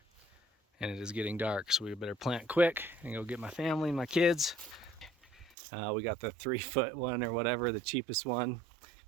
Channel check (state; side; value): drops out; left; at 5.6 s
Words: and it is getting dark, so we better plant quick and go get my family and my kids. We got the 3-foot one or whatever, the cheapest one,